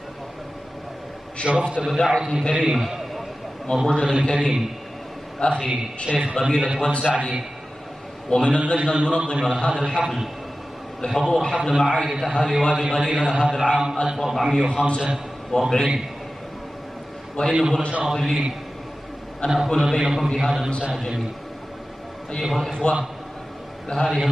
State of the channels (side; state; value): both; normal; correlation 0.95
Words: شرفت بدعوة كريمة من رجل كريم أخي شيخ قبيلة واد سعدي ومن اللجنة المنظمة لهذا الحفل لحضور حفل معايدة أهالي وادي غليلة هذا العام 1445. وإنه لشرف لي أن أكون بينكم في هذا المساء الجميل. أيها الإخوة، لهذه